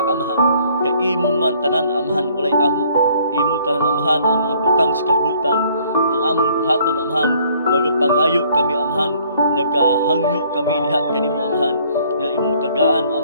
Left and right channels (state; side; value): inverted; both; correlation -0.61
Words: Amahan. Kay imo man tanan Amahan walay amo. Imo tanan Amahan ang mga butang sa kalibutan ng among buhaton Amahan. Magapangayo kami Amahan, nagahangyo kami diha kanimo Amahan. Nga imong tagaan